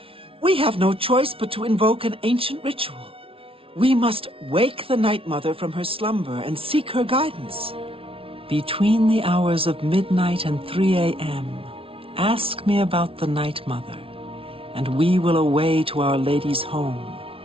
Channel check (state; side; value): late; left; 0.26 ms